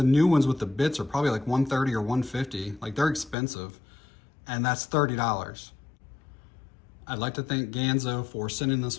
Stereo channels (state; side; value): drops out; right; at 3.4 s